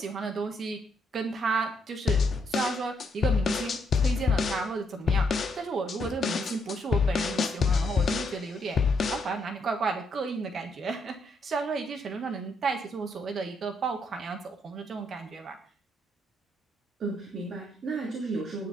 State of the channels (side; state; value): both; normal; correlation 0.75